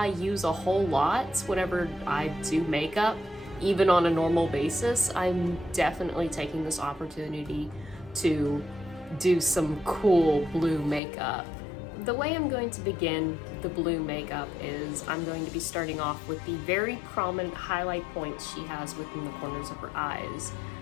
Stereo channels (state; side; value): drops out; right; at 11.0 s